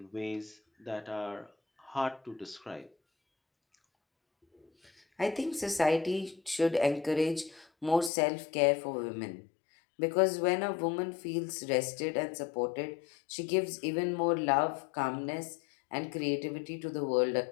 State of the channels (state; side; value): drops out; right; at 8.1 s